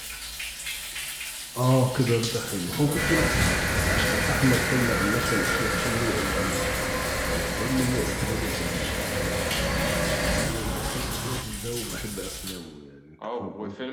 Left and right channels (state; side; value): identical; both; correlation 1.00